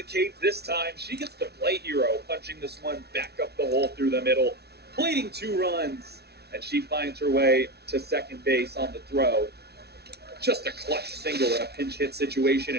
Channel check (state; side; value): late; left; 0.48 ms